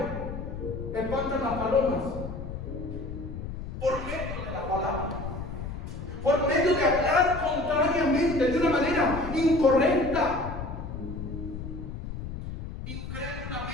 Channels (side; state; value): left; noise; rumble, 8 dB below the sound